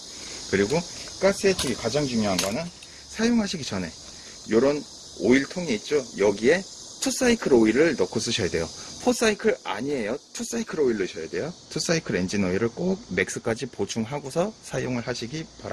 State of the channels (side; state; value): both; identical; correlation 1.00